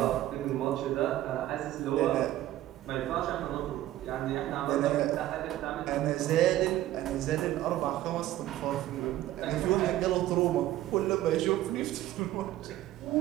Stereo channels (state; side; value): quieter; left; 14.3 dB